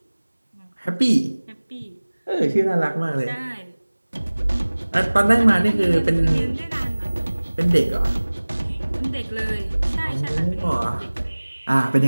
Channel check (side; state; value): both; inverted; correlation -1.00